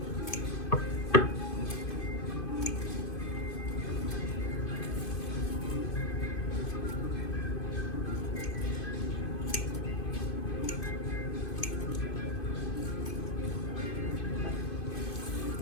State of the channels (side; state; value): right; late; 2.5 ms